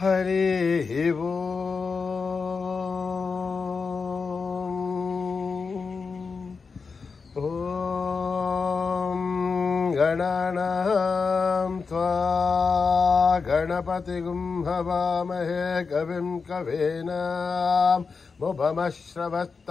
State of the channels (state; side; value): quieter; right; 4.9 dB